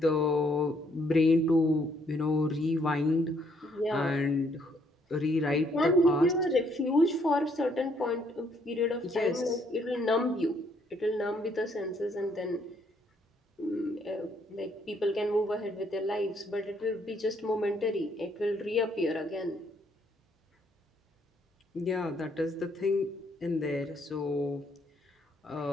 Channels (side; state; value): both; normal; correlation 0.69